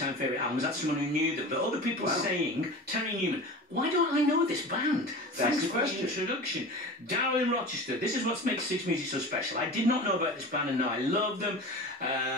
favourite albums. That's someone who knew them. But other people saying, Terry Newman, why don't I know this band? Thanks for the introduction. Darryl in Rochester, this is what makes Six Music so special. I did not know about this band and now I love them.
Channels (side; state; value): both; normal; correlation 0.33